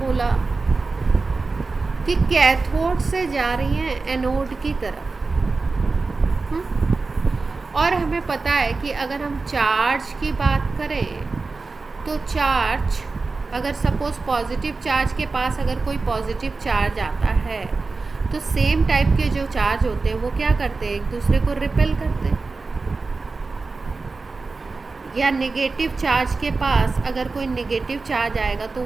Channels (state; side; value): quieter; left; 3.9 dB